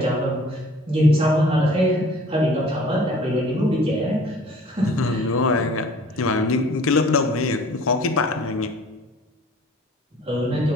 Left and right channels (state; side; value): normal; both; correlation 0.51